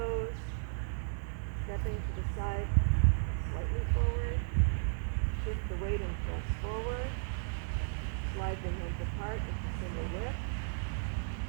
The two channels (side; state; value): left; silent; 55 dB below the other